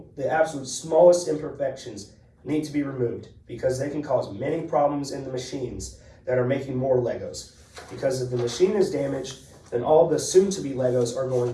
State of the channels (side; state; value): both; identical; correlation 1.00